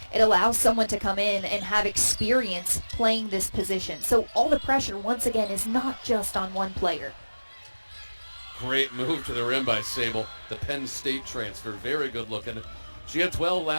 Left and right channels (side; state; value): both; inverted; correlation -1.00